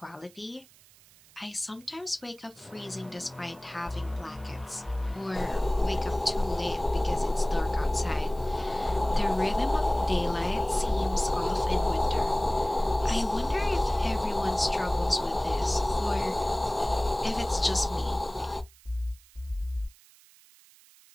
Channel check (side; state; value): right; noise; hiss, 26 dB below the sound